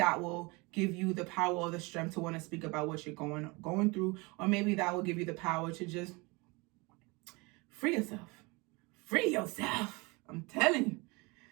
will give you the power or the strength to want to speak about what you're going through, or maybe that will give you the power to just free yourself. Free yourself. I'm telling you.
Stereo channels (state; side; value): quieter; left; 26.5 dB